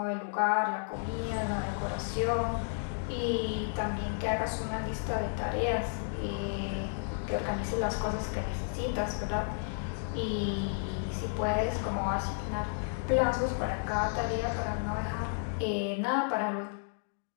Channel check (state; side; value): silent; right; digital silence